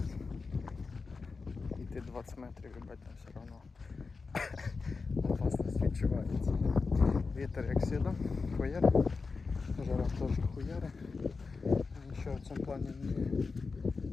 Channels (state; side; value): quieter; right; 4.4 dB